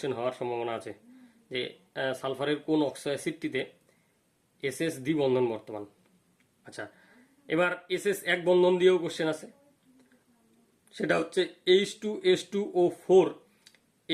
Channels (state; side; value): identical; both; correlation 1.00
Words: হওয়ার সম্ভাবনা আছে যে সালফারের কোন অক্সো অ্যাসিডটিতে SS দ্বিবন্ধন বর্তমান। আচ্ছা, এবার SS এক বন্ধন দিয়েও কোশ্চেন আছে, সেটা হচ্ছে H2S2O4